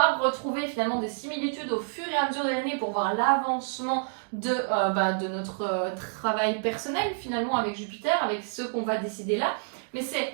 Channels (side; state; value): left; silent; digital silence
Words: retrouver finalement des similitudes au fur et à mesure de l'année pour voir l'avancement de notre travail personnel finalement avec Jupiter, avec ce qu'on va décider là. Mais